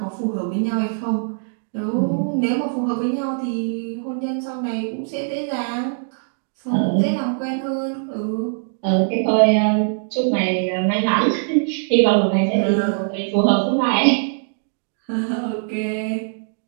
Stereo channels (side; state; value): left; silent; digital silence